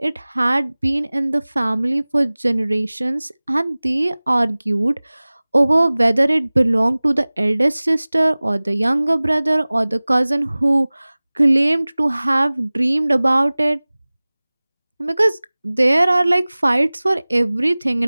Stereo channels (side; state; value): both; inverted; correlation -1.00